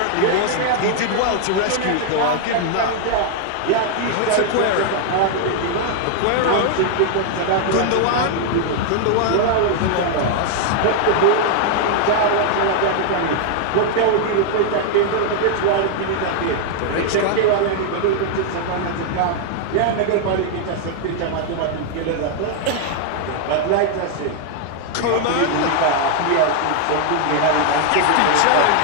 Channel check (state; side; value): different; both; correlation 0.00